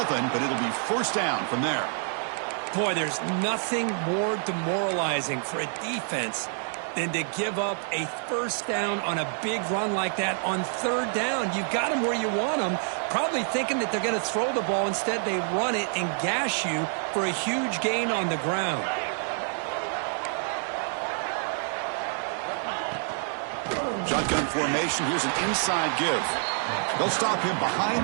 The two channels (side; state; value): left; silent; 59 dB below the other